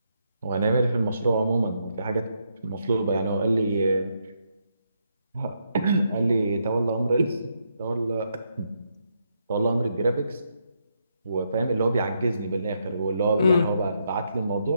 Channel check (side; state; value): both; inverted; correlation -0.79